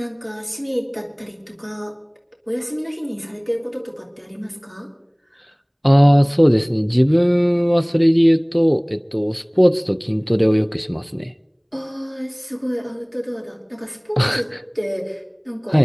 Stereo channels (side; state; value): both; identical; correlation 1.00